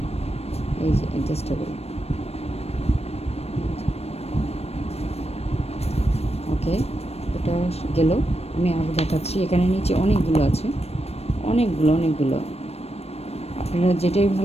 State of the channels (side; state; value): right; late; 0.30 ms